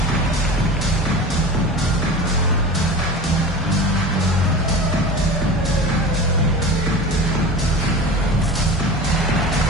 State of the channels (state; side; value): normal; both; correlation 0.33